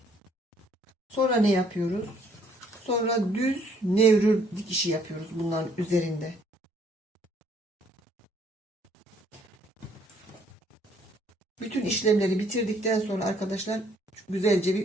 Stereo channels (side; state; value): both; normal; correlation 0.63